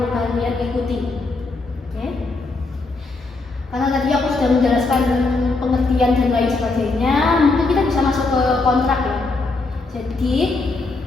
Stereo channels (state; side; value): quieter; right; 3.5 dB